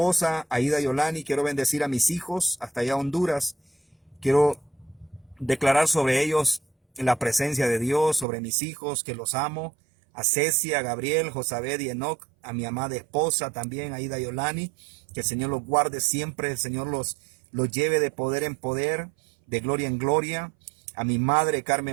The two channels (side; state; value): left; drops out; at 8.2 s